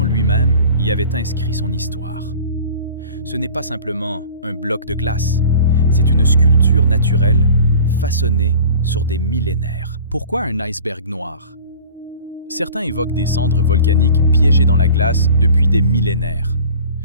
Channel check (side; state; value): both; inverted; correlation -0.44